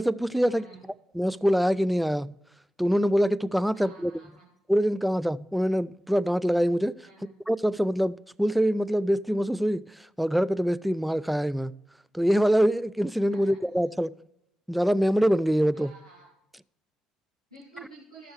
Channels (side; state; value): both; normal; correlation 0.98